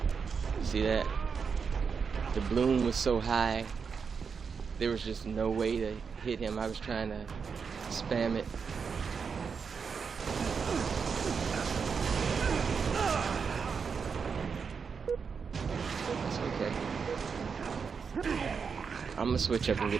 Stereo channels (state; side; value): quieter; left; 5.9 dB